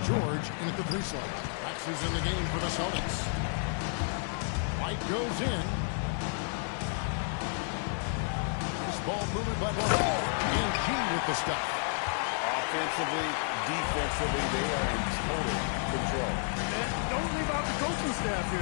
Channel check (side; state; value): right; silent; 57 dB below the other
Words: George in at the 3 slot. Rex is in the game for the Celtics. White goes in. This ball moving by White. And G with the stuff. Offensively, defensively, they are in total control. And don't leave out the coaching staff